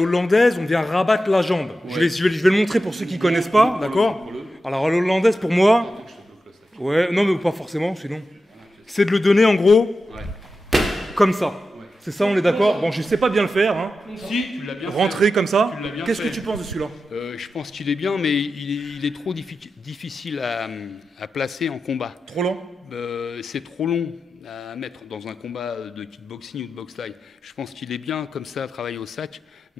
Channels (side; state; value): both; normal; correlation 0.91